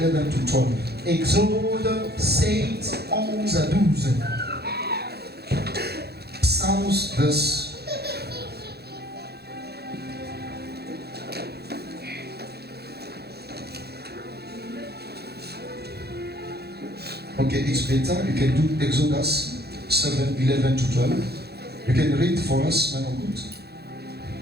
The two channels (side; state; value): left; late; 0.47 ms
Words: to 12. Exode 7, 11 à 12. Psalms verse Okay, it's better. You can do Exodus 7, 11 to 12. You can read for us, man of God.